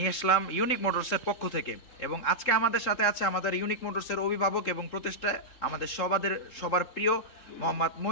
আসলাম ইউনিক মোটরসের পক্ষ থেকে। এবং আজকে আমাদের সাথে আছে আমাদের ইউনিক মোটরসের অভিভাবক এবং প্রতিষ্ঠা আমাদের সবার প্রিয় মোহাম্মদ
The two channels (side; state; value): right; late; 3.7 ms